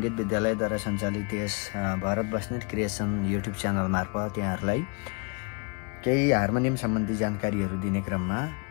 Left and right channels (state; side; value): quieter; right; 33.1 dB